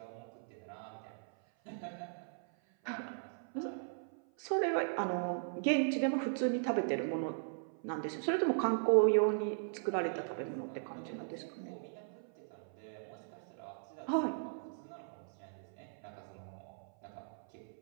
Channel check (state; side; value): silent; left; 52 dB below the other